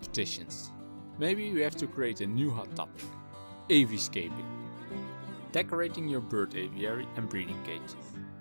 Maybe we have to create a new hot topic. Aviscaping. Decorating your bird aviary and breeding cages.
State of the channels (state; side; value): inverted; both; correlation -1.00